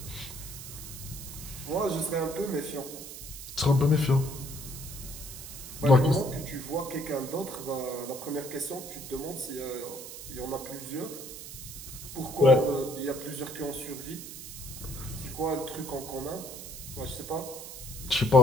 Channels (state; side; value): noise; right; hiss, 11 dB below the sound